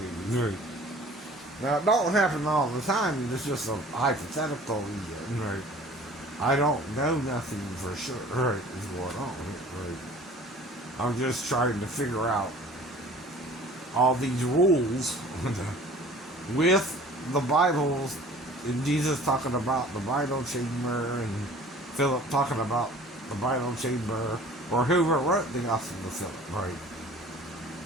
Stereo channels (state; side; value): normal; both; correlation 0.47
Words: Now, it don't happen all the time. It's just a hypothetical. Right. I don't know nothing for sure. Right, is going on. Right. I'm just trying to figure out all these rules with the Bibles, and Jesus talking about the bridal chamber, and Philip talking about the bridal chamber, or whoever wrote the Gospel of Phillip, right?